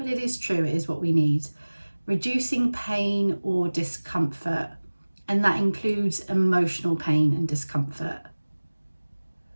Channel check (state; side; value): inverted; both; correlation -1.00